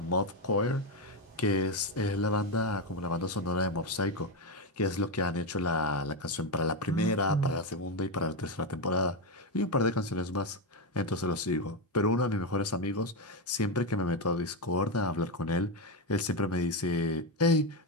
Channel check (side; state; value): both; normal; correlation 0.09